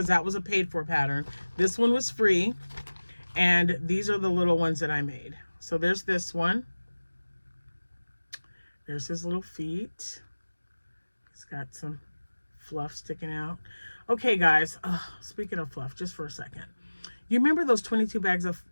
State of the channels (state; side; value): inverted; both; correlation -1.00